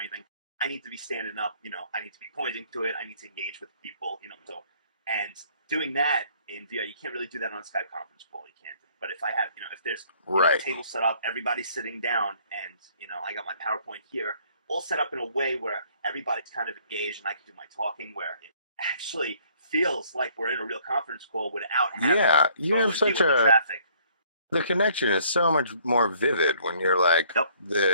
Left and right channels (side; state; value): both; inverted; correlation -0.61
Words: I need to be standing up. I need to be pointing to it. I need to engage with people. So, and doing that in VR, you can't really do that on a Skype conference call. You can't. But if I have, if there's a table set up, everybody's sitting down, and I got my PowerPoint here, all set up in a way where everybody's kind of engaged, and I can do my talking, where it actually feels like we're in a real conference call without having you have such a traffic. The connection is so much more vivid when you're like